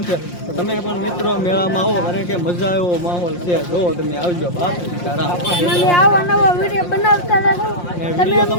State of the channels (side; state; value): right; late; 5.7 ms